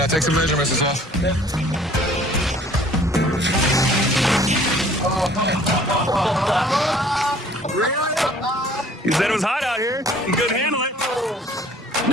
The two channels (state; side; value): normal; both; correlation 0.54